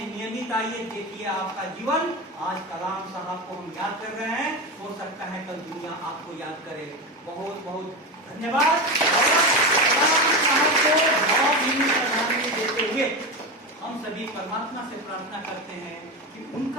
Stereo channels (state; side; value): normal; both; correlation 0.19